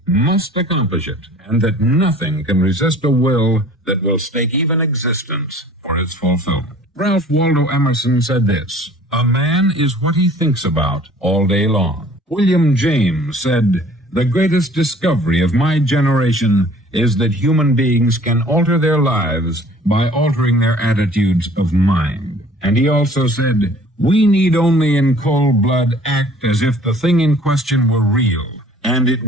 must accomplish it, and that nothing can resist a will that will stake even existence for its fulfillment." Ralph Waldo Emerson said this, "A man is what he thinks about all day long." William James said, "The greatest discovery of my generation is that human beings can alter their lives by altering their attitudes of mind." And he also said, "We need only in cold blood act as if the thing in question were real, and it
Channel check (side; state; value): both; normal; correlation 0.51